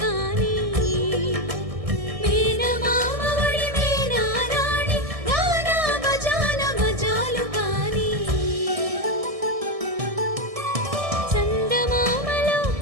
కాని మేనమామ ఒడి మేనారాణి గానా బజాన మజాలు కాని చందమామలో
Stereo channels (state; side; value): late; left; 1.6 ms